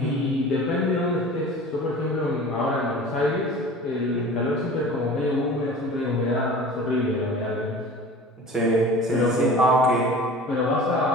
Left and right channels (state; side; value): normal; both; correlation 0.40